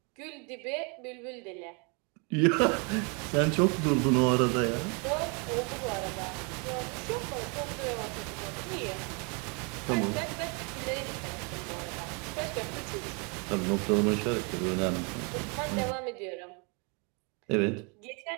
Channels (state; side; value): quieter; left; 33.6 dB